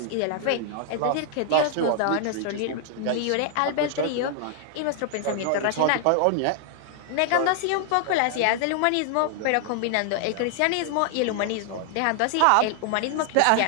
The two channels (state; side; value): different; both; correlation 0.00